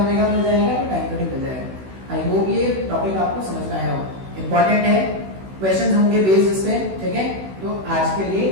मिल जाएगा तो टाइम पीरियड मिल जाएगा। आई होप ये टॉपिक आपको समझ में आया हो, इंपॉर्टेंट है, क्वेश्चंस होंगे बेस्ड इस पे, ठीक है। तो आज के लिए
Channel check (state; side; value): late; left; 16 ms